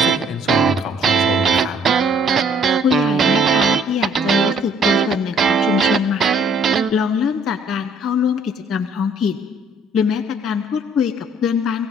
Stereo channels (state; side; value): normal; both; correlation 0.62